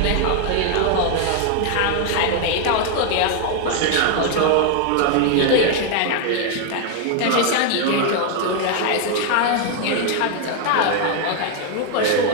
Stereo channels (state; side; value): different; both; correlation 0.01